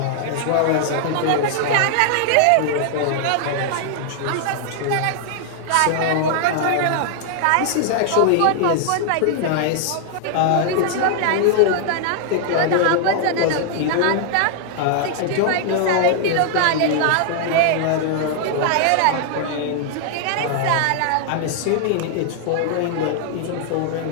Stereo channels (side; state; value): both; different; correlation -0.01